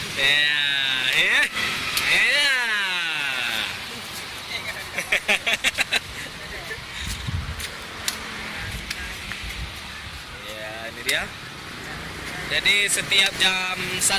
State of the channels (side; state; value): both; identical; correlation 1.00